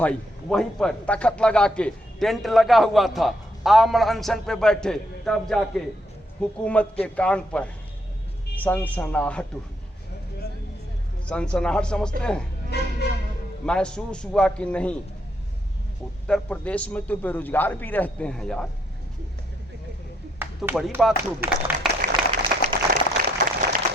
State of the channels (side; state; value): both; normal; correlation 0.74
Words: वहीं पर तख्त लगा के, टेंट लगा हुआ था, आमरण अनशन पे बैठे। तब जाके हुकूमत के कान पर सनसनाहट हुई। सनसनाहट समझते हैं? महसूस हुआ कि नहीं, उत्तर प्रदेश में तो बेरोजगार भी रहते हैं यार, तो बड़ी बात होगी।